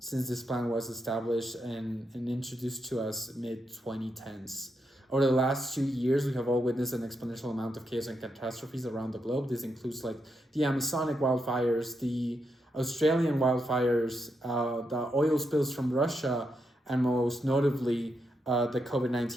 this plan was established and introduced to us mid-2010s. Over the last 2 years, we have all witnessed an exponential amount of chaos and catastrophes around the globe. This includes like the Amazonic wildfires, the Australian wildfires, the oil spills from Russia, and most notably, the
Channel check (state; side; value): normal; both; correlation 0.82